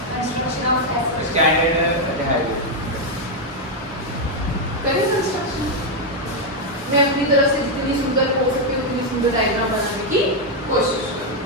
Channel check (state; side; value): normal; both; correlation 0.01